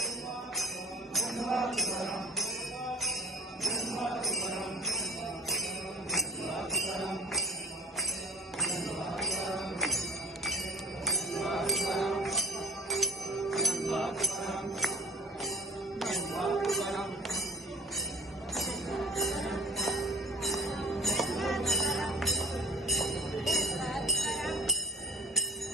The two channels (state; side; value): normal; both; correlation 0.44